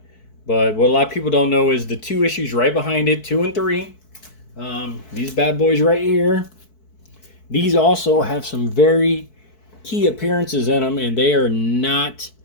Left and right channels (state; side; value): late; right; 4.6 ms